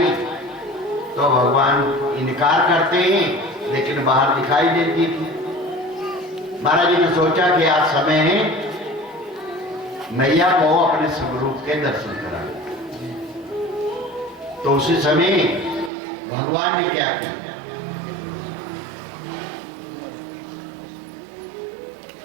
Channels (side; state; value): left; drops out; at 15.9 s